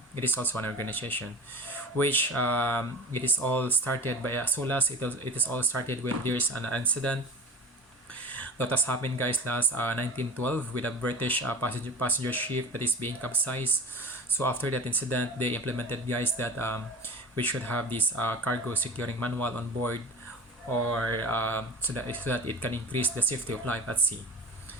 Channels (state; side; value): normal; both; correlation 0.36